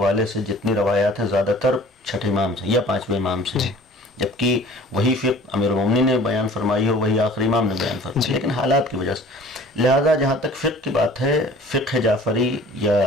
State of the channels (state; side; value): normal; both; correlation 0.48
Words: سے جتنی روایات ہیں زیادہ تر چھٹے امام سے یا پانچویں امام سے، جبکہ وہی فقہ امیر المومنین نے بیان فرمائی ہو، وہی آخری امام نے بیان فرمائی، لیکن حالات کی وجہ سے. لہذا جہاں تک فقہ کی بات ہے، فقہ جعفری